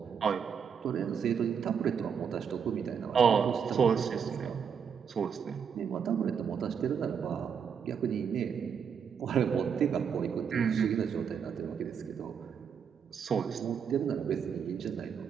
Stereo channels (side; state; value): left; quieter; 7.1 dB